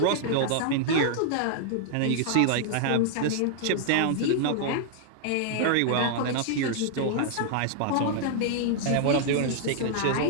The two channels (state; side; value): different; both; correlation -0.01